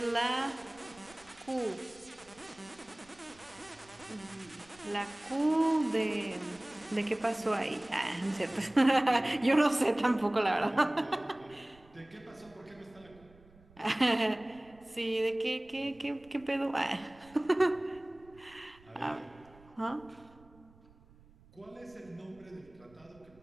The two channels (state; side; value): noise; right; rumble, 26 dB below the sound